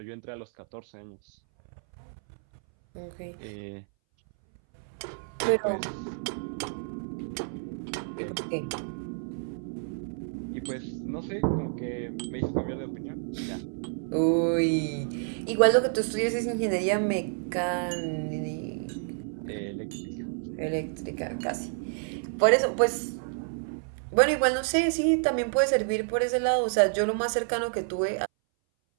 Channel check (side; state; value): left; silent; 58 dB below the other